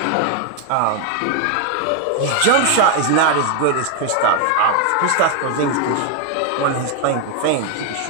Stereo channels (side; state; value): both; different; correlation 0.00